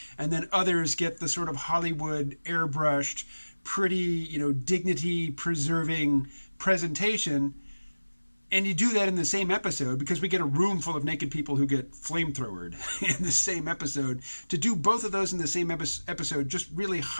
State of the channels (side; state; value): both; inverted; correlation -1.00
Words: and then others get the sort of Hollywood airbrushed, pretty, dignity preserving presentation, and you do that in the same episode, because we get a room full of naked people who get flamethrowered in the same episode. To do both of those in the same episode just really